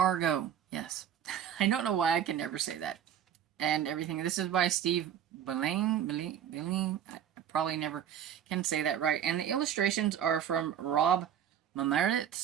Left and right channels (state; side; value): quieter; left; 9.5 dB